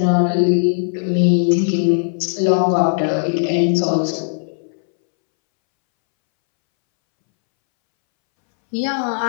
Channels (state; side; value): silent; right; 66 dB below the other